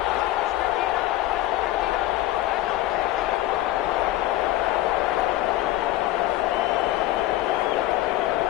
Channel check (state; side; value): quieter; right; 15.5 dB